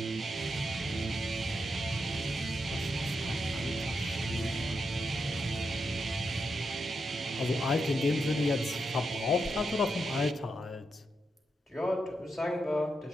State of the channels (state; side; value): normal; both; correlation 0.84